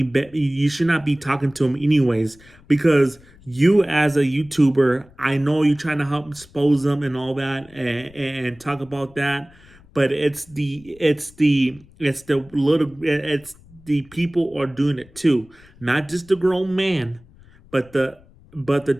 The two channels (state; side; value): noise; left; rumble, 26 dB below the sound